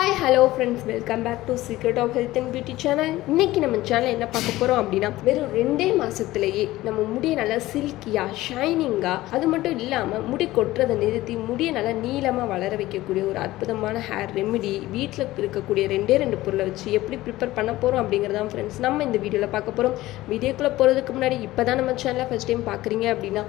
hello friends, welcome back to Secret of Health and Beauty channel. இன்னைக்கு நம்ம சேனல்ல என்ன பார்க்க போறோம் அப்படினா வெறும் 2 மாசத்திலேயே நம்ம முடியை நல்லா சில்கியா ஷைனிங்கா அது மட்டும் இல்லாம முடி கொட்றதை நிறுத்தி முடியை நல்லா நீளமா வளர வைக்கக்கூடிய ஒரு அற்புதமான ஹேர் ரெமெடி வீட்ல இருக்கக்கூடிய ரெண்டு பொருளை வச்சு எப்படி ப்ரிப்பேர் பண்ண போறோம் அப்படிங்கறத ஃப்ரெண்ட்ஸ் நம்ம இந்த வீடியோல பார்க்க போறோம். வீடியோக்குள்ள போறதுக்கு முன்னாடி இப்பதான் நம்ம சேனலை ஃபர்ஸ்ட் டைம் பார்க்கறீங்க அப்படினா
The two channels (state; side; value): quieter; right; 17.0 dB